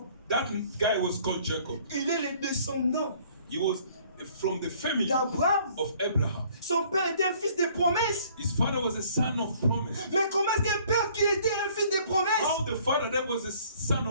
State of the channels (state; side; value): inverted; both; correlation -0.57